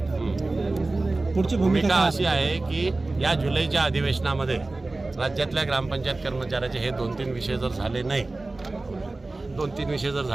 तर पुढची भूमिका अशी आहे की या जुलैच्या अधिवेशनामध्ये राज्यातल्या ग्रामपंचायत कर्मचाऱ्याचे हे 2-3 विषय जर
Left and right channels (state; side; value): quieter; left; 3.1 dB